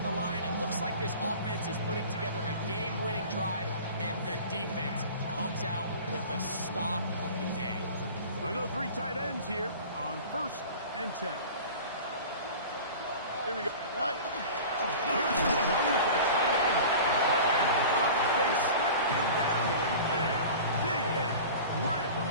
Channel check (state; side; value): inverted; both; correlation -0.38